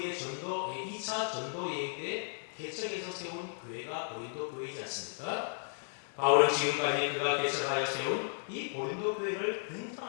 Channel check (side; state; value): right; silent; digital silence